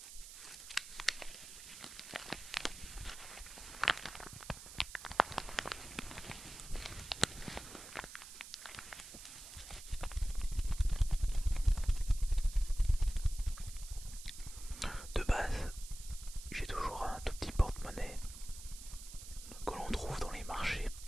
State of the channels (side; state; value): right; noise; hiss, 13 dB below the sound